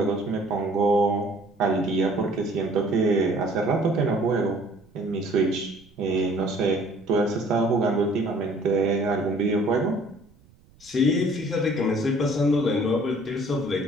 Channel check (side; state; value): right; noise; rumble, 29 dB below the sound